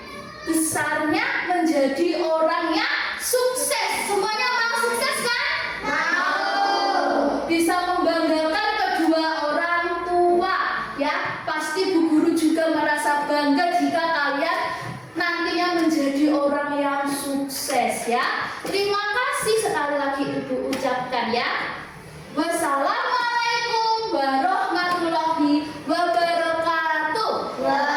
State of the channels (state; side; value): identical; both; correlation 1.00